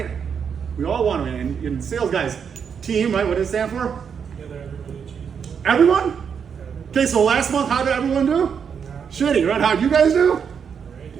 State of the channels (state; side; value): quieter; left; 7.0 dB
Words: We all want to win. And sales guys, team, right? What does it stand for? Everyone? Okay, so last month, how did everyone do? Shitty, right? How'd you guys do?